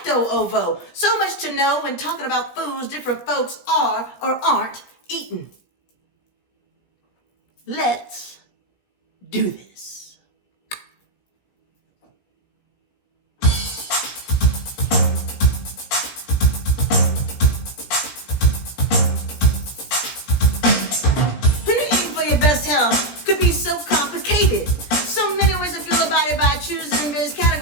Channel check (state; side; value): late; right; 17 ms